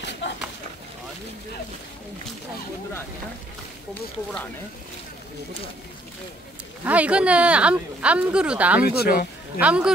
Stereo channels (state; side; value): normal; both; correlation 0.66